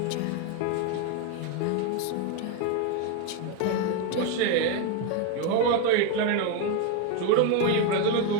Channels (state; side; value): different; both; correlation 0.01